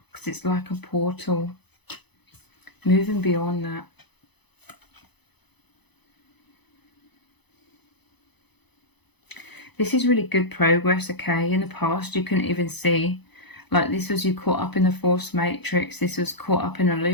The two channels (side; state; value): right; late; 0.99 ms